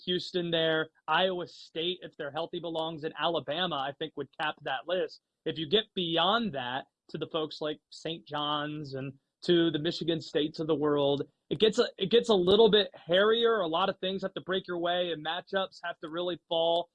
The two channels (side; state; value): both; identical; correlation 1.00